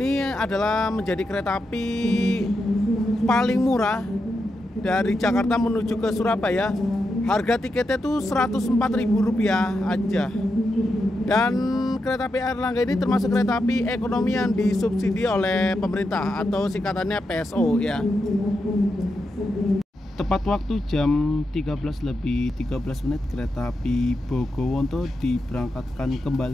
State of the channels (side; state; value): both; normal; correlation 0.86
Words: adalah menjadi kereta api paling murah dari Jakarta menuju ke Surabaya. Harga tiketnya tuh Rp104.000 aja. Dan kereta api Airlangga ini termasuk kereta api ekonomi yang disubsidi oleh pemerintah atau singkatannya PSO ya. Tepat waktu jam 13:13 kereta api Bogonto diberangkatkan